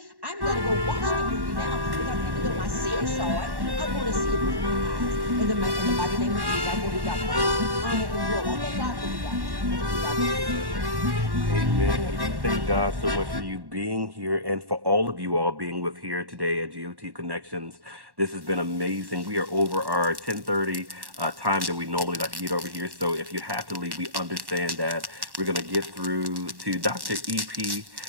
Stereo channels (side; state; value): left; late; 1.1 ms